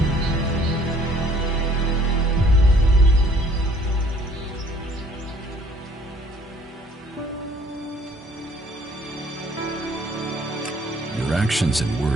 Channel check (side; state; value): both; normal; correlation 0.58